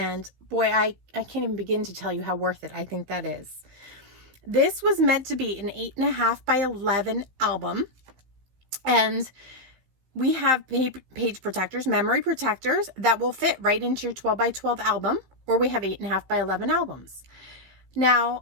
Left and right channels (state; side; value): late; left; 15 ms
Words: boy, I can't even begin to tell you how worth it I think that is. This was meant to be an 8.5 by 11 album, and we have page protectors, memory protectors that will fit right into your 12 by 12 album, or we have 8.5 by 11 albums.